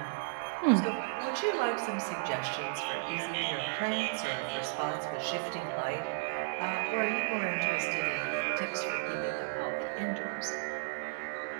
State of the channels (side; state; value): left; silent; digital silence